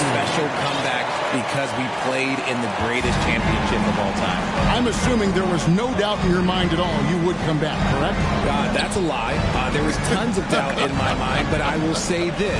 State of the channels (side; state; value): both; identical; correlation 1.00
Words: comeback because we played in the greatest championship of all time. I'm assuming there was no doubt in your mind at all you would come back, correct? That's a lie. There was tons of doubt in my mind, but I will say